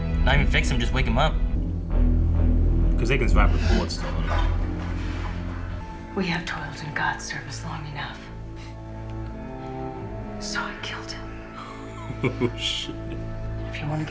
Not even fix him, just wake him up. Because they can survive with bullets still in them. We have toiled in God's service long enough. So I killed him. Oh, shit. If you want to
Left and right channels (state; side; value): identical; both; correlation 1.00